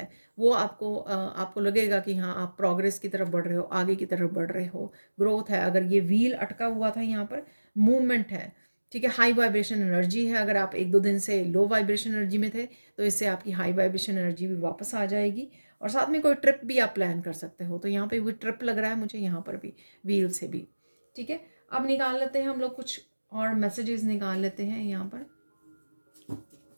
वो आपको लगेगा कि हाँ, आप प्रोग्रेस की तरफ बढ़ रहे हो, आगे की तरफ बढ़ रहे हो, ग्रोथ है। अगर ये व्हील अटका हुआ था, यहाँ पर मूवमेंट है, ठीक है। हाई वाइब्रेशन एनर्जी है, अगर आप 1-2 दिन से लो वाइब्रेशन एनर्जी में थे, तो इससे आपकी हाई वाइब्रेशन एनर्जी भी वापस आ जाएगी। और साथ में कोई ट्रिप भी आप प्लान कर सकते हो, तो यहाँ पे भी ट्रिप लग रहा है मुझे, यहाँ पर भी व्हील से भी, ठीक है। अब निकाल लेते हैं हम लोग कुछ और मैसेजेस निकाल लेते हैं यहाँ पर,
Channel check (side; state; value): both; inverted; correlation -1.00